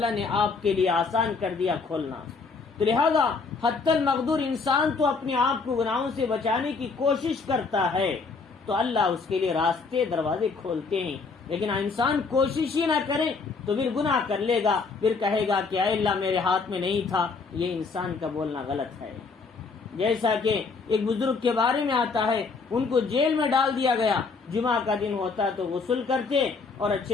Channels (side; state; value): right; quieter; 4.6 dB